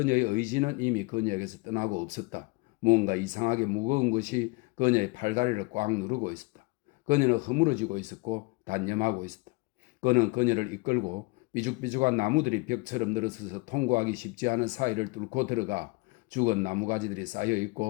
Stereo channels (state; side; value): quieter; right; 26.4 dB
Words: 의지는 이미 그녀에게서 떠나고 없었다. 무언가 이상하게 무거운 것이 그녀의 팔다리를 꽉 누르고 있었다. 그녀는 허물어지고 있었고 단념하고 있었다. 그는 그녀를 이끌고 삐죽삐죽한 나무들이 벽처럼 늘어서서 통과하기 쉽지 않은 사이를 뚫고 들어가 죽은 나무가지들이